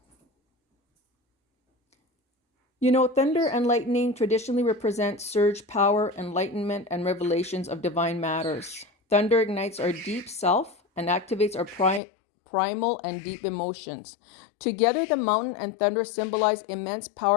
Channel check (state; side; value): drops out; right; at 12.0 s